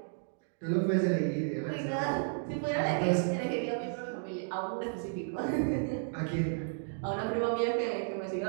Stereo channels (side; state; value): left; silent; digital silence